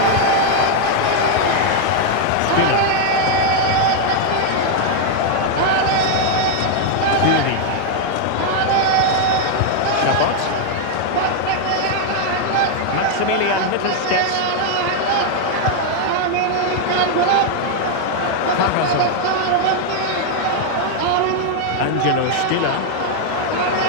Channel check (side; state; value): both; different; correlation 0.00